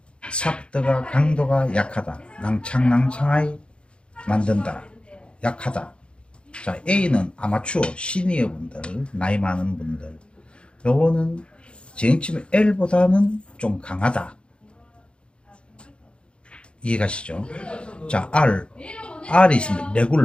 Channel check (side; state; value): right; late; 0.056 ms